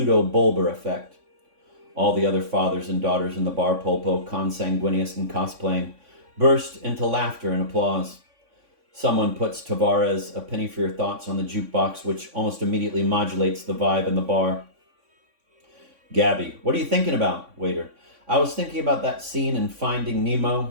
effect. All the other fathers and daughters in the bar, Polpo, consanguineous and cosplaying, burst into laughter and applause. Someone puts Tavares' A Penny for Your Thoughts on the jukebox, which almost immediately modulates the vibe in the bar. Gabby, what are you thinking about, waiter? I was thinking about that scene in Finding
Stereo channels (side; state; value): left; late; 3.5 ms